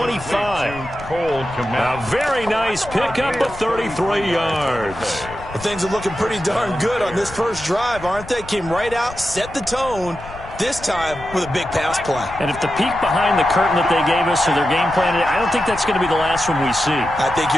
A very nice pickup of 33 yards. Well, things are looking pretty darn good on this first drive, aren't they? Came right out, set the tone, this time with a big pass play. And if the peek behind the curtain that they gave us or their game plan, I don't think that's going to be the last one we see. I think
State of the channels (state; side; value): noise; left; rumble, 15 dB below the sound